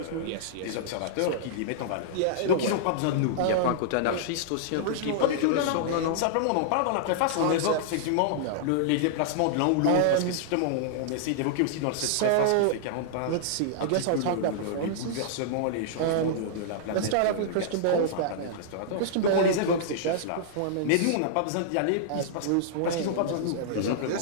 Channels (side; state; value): both; different; correlation -0.01